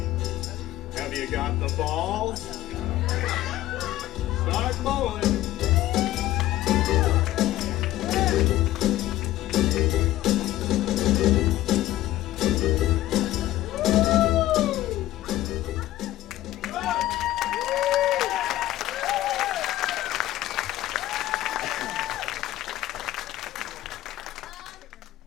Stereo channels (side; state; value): right; quieter; 14.9 dB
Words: Have you got the balls? Start bowling.